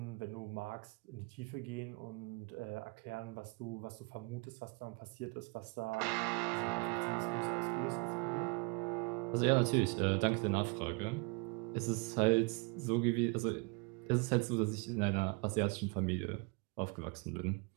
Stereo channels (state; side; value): quieter; left; 30.3 dB